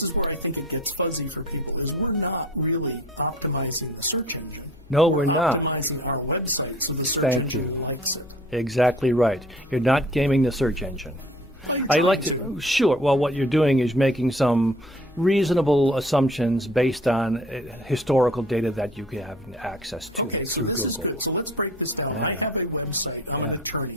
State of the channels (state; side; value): normal; both; correlation 0.49